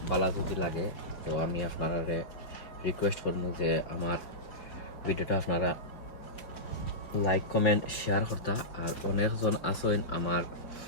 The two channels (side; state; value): right; late; 5.1 ms